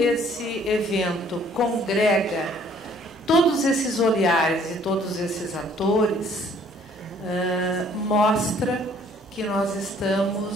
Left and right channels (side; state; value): both; normal; correlation 0.59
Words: evento congrega todos esses olhares e todos esses atores, mostra que nós